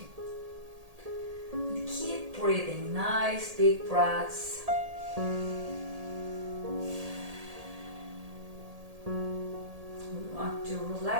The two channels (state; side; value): late; left; 1.8 ms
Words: And keep breathing, nice big breaths. We want to